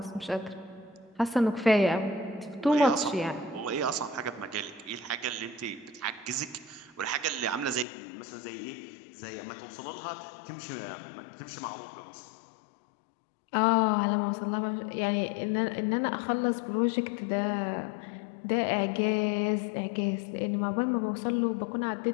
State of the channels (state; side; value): drops out; right; at 7.9 s